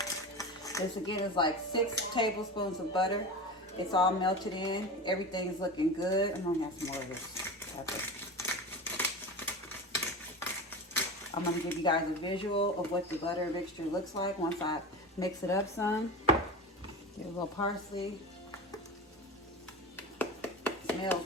This again is like 6 tablespoons of butter. It's all melted in. Everything's looking good. I'm gonna have some more of this pepper. I'm gonna give you guys a visual of what the butter mixture looks like once I mix it up some. Get a little parsley. Smells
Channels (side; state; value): both; normal; correlation 0.28